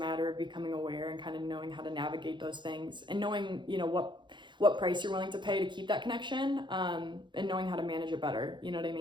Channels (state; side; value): late; left; 0.23 ms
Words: of becoming aware and kind of knowing how to navigate those things, and knowing, you know, what price you're willing to pay to keep that connection, and knowing how to manage it better. You know what I